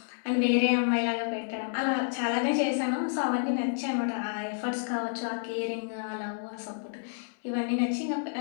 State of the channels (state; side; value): silent; right; 58 dB below the other